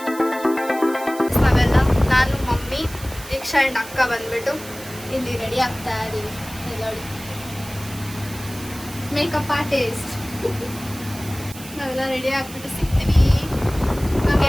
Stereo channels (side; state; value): right; noise; hiss, 15 dB below the sound